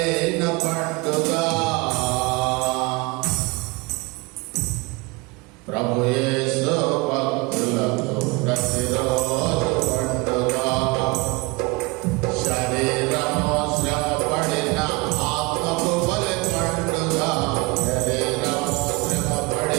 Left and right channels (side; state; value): left; quieter; 26.0 dB